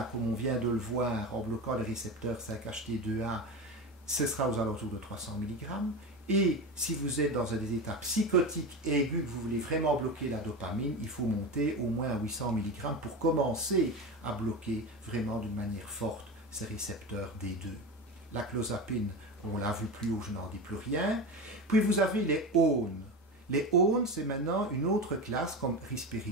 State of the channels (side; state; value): both; normal; correlation 0.24